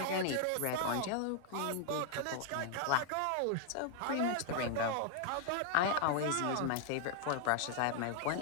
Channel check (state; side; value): different; both; correlation 0.00